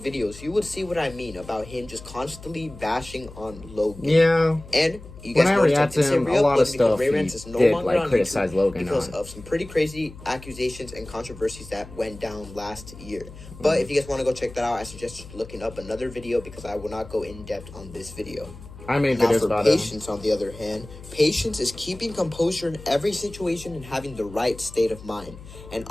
you would see what I mean about him just constantly bashing on Logan. Yeah. And you guys know react to him, a lot of stuff Ray Rans is no longer on criticize Logan because on. of some pretty crazy accusations and controversies that went down last year. But if you guys want to go check that out, I suggest looking up another video because I will not go in depth on this video. I made videos about it. Patience, on the other hand, patience is keeping composure in every situation and having the right state of mind. And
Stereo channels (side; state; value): left; noise; hum, 17 dB below the sound